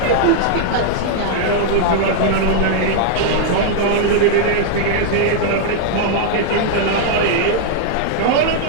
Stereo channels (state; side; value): different; both; correlation -0.01